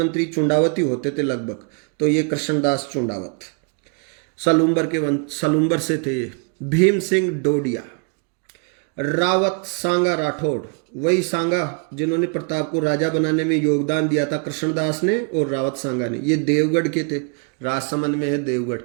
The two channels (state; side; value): quieter; left; 38.0 dB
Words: चुंडावत ही होते थे लगभग। तो ये कृष्णदास चुंडावत सलूम्बर से थे ये। भीम सिंह डोडिया, रावत सांगा राठौड़, वही सांगा जिन्होंने प्रताप को राजा बनाने में योगदान दिया था, कृष्णदास ने और रावत सांगा ने। ये देवगढ़ के थे, राजसमंद में है देवगढ़,